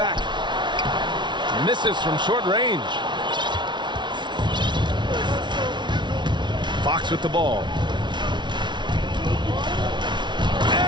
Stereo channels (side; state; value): left; late; 0.22 ms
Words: Misses from short range. Fox with the ball.